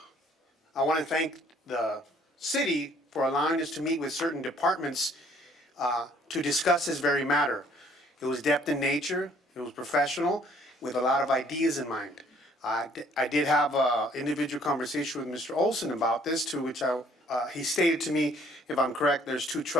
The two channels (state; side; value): normal; both; correlation 0.60